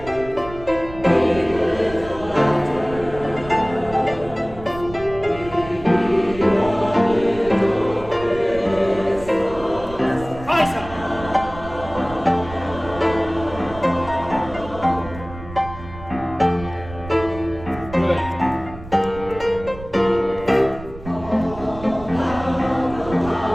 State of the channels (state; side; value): noise; right; rumble, 15 dB below the sound